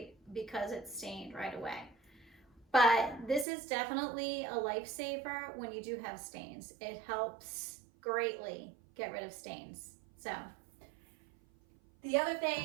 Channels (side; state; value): left; drops out; at 3.5 s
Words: because it's stained right away. But this is definitely a lifesaver when you do have stains. It helps greatly get rid of stains. So the other